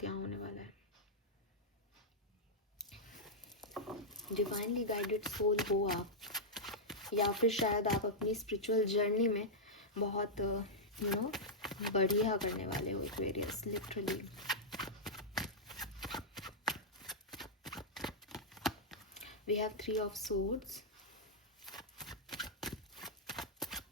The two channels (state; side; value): normal; both; correlation -0.07